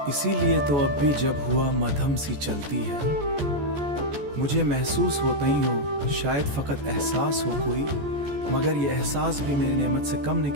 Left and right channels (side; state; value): left; late; 14 ms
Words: इसीलिए तो अब भी जब हुआ मध्यम सी चलती है, मुझे महसूस होता ही हो, शायद फकत एहसास हो कोई, मगर ये एहसास भी मेरी नेमत से कम नहीं